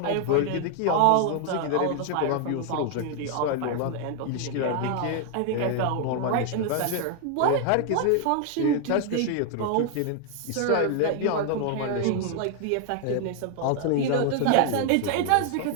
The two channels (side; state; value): both; different; correlation 0.00